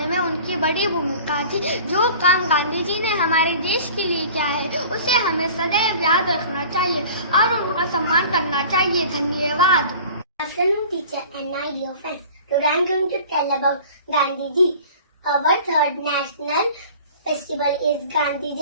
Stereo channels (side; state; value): both; inverted; correlation -0.43